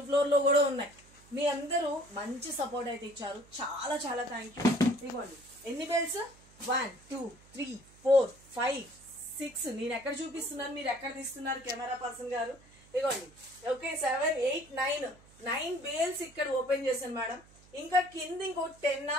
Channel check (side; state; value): right; noise; hum, 26 dB below the sound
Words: ఫ్లోర్లో కూడా ఉన్నాయి. మీ అందరూ మంచి సపోర్ట్ అయితే ఇచ్చారు, చాలా చాలా థ్యాంక్ యూ. ఇదిగోండి ఎన్ని బేల్స్, 1 2 3 4 5 6. నేను ఎక్కడ చూపిస్తున్నాను, మీరు ఎక్కడ తీస్తున్నారు కెమెరా పర్సన్ గారు? ఇదిగోండి ఓకే 7 8 9 బేల్స్ ఇక్కడ ఓపెన్ చేశాను మేడం. ఇంకా కింద ఇంకో 10